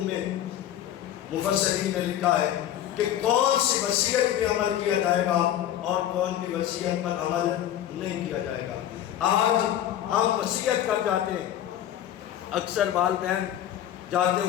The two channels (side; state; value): right; quieter; 11.5 dB